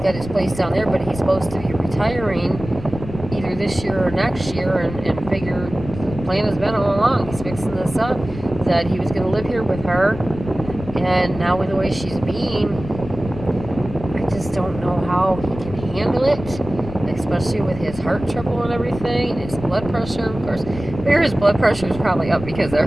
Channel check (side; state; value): left; noise; rumble, 11 dB below the sound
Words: got his place down there, but he's supposed to be retiring either this year or next year, and figure the plan has been all along. He's fixing this up, that he was going to live here with her, and now with the way she's being, I just don't know how he can handle it, especially with his heart trouble and everything, his blood pressure, of course. His blood pressure is probably up because